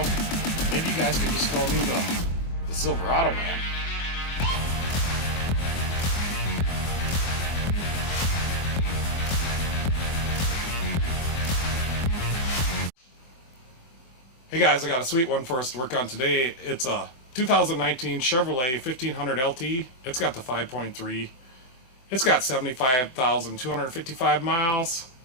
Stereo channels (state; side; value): late; right; 24 ms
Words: maybe you guys can just call me the Silverado man. Hey guys, I got a sweet one for us to work on today. It's a 2019 Chevrolet 1500 LT. It's got the 5.3. It's got 75,255 miles.